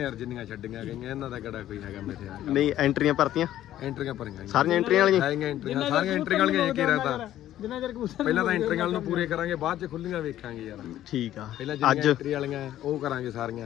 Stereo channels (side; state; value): right; quieter; 12.7 dB